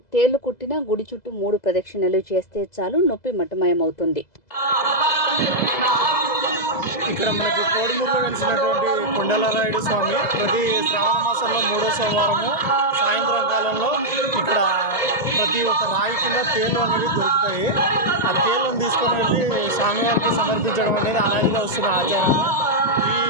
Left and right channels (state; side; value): late; right; 2.0 ms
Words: తేళ్లు కుట్టిన గుడి చుట్టూ 3 ప్రదక్షిణలు చేస్తే చాలు, నొప్పి మటమయమవుతుంది. ఇక్కడ మనకి కోడుమూరులో వెలిసినటువంటి కొండలరాయుడు స్వామి ప్రతి శ్రావణ మాసంలో 3వ సోమవారము సాయంత్రం కాలంలో ఇక్కడ ప్రతి ఒక్క రాయి కింద తేళ్లు అనేవి దొరుకుతాయి. ఆ తేళ్లను తీసుకొని వెళ్ళి స్వామివారికి సమర్పించడం అనేది అలాగే వస్తున్న ఆచారం. ఈ